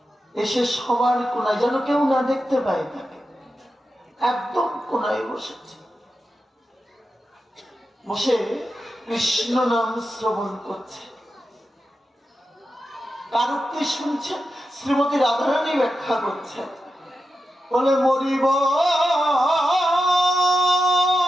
এসে সবার কোনায়, যেন কেউ না দেখতে পায় তাকে, একদম কোনায় বসেছে। বসে কৃষ্ণ নাম শ্রবণ করছে। কার উক্তি শুনছেন? শ্রীমতী রাধারানী ব্যাখ্যা করছেন, বলে মরিব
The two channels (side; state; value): both; normal; correlation 0.90